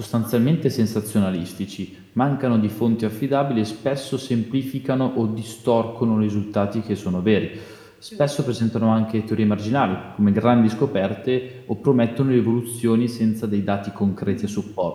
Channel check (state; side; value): identical; both; correlation 1.00